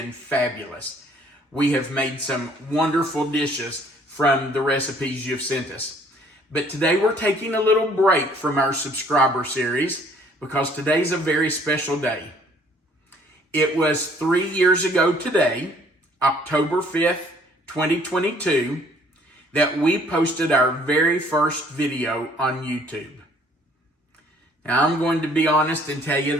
fabulous. We have made some wonderful dishes from the recipes you've sent us. But today we're taking a little break from our subscriber series because today's a very special day. It was 3 years ago today, October 5th, 2022, that we posted our very first video on YouTube. Now I'm going to be honest and tell you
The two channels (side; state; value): both; normal; correlation 0.59